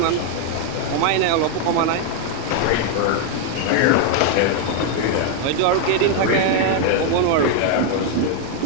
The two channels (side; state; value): both; different; correlation 0.00